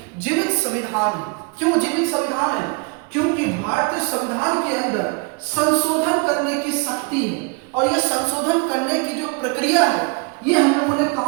जीवित संविधान है। क्यों जीवित संविधान है, क्योंकि भारतीय संविधान के अंदर संशोधन करने की शक्ति है। और यह संशोधन करने की जो प्रक्रिया है ये हम लोगों ने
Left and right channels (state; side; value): quieter; left; 31.7 dB